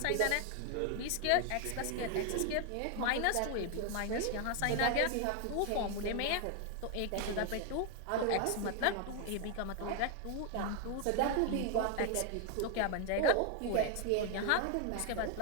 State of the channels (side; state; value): both; different; correlation 0.01